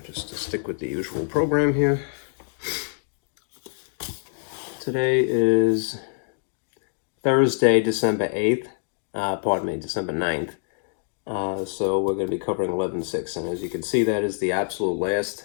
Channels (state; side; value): silent; right; 60 dB below the other